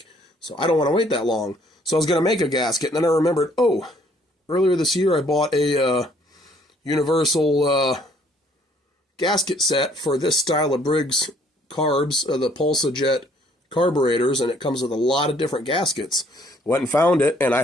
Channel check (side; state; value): both; normal; correlation 0.62